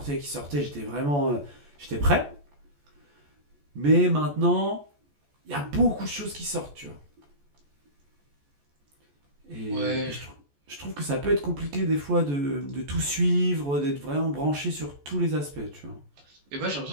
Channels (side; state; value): left; late; 14 ms